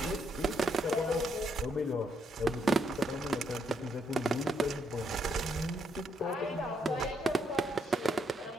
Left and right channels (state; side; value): normal; both; correlation 0.76